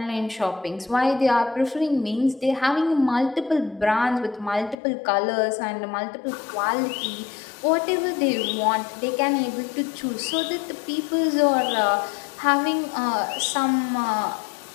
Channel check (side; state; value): right; drops out; at 4.8 s